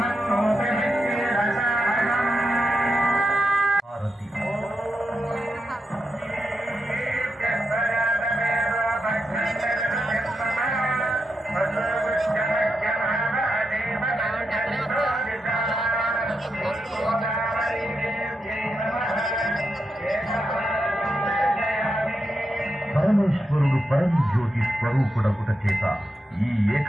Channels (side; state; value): both; normal; correlation 0.85